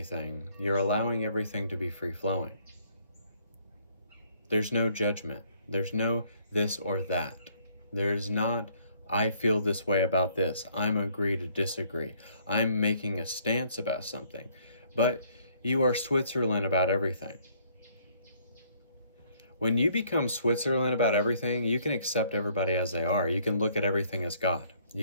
you're allowing everything to be free-flowing. There's no judgment. There's no this or that. There's not, I feel this way about this. I'm agree to disagree. I'm making a stance about something. But you are Switzerland about everything. When you become Switzerland about everything, you can accept everybody as they are. You can look at everything as God.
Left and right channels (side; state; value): both; inverted; correlation -0.63